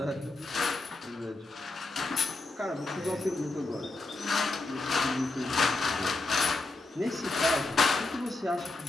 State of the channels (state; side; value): quieter; right; 3.1 dB